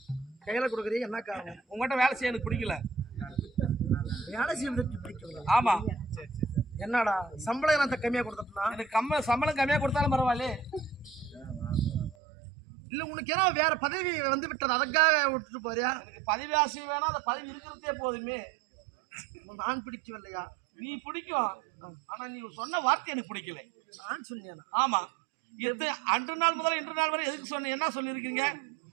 கையில கொடுக்குறீங்க. என்ன காரணம்? உங்ககிட்ட வேலை செய்ய எனக்கு பிடிக்கல. வேலை செய்வதற்கு பிடிக்கல? ஆமா. என்னடா சம்பளம் என்ன கம்மியா கொடுத்தா? எனக்கு சம்பளம் கம்மியா கொடுத்தாலும் பரவாயில்ல. இல்ல உனக்கு ஏன்னா வேற பதவி வந்து விட்டது அதுக்காக விட்டுட்டு போறியா? எனக்கு பதவி ஆசை வேணா அந்த பதவி இருக்கிறதே போதுமே. நான் பிடிக்கவில்லையா? நீ பிடிக்கும். ஆனா நீ சொன்ன வார்த்தை எனக்கு பிடிக்கல. நான் சொன்னேனா? ஆமா. அன்று நாள் முதல் இன்று நாள் வரை எதுக்கு சொன்ன என்ன சொல்லியிருக்கீங்க?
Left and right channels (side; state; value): left; drops out; at 12.2 s